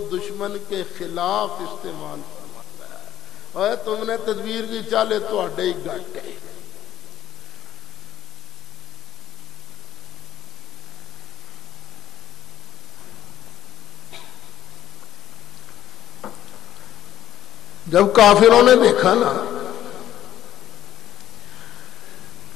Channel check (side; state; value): right; quieter; 12.2 dB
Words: دشمن کے خلاف استعمال فرماتا ہے۔ اور تم نے تدبیر کی چالے تو اڈے ہی گٹ گئے۔ جب کافروں نے دیکھا نا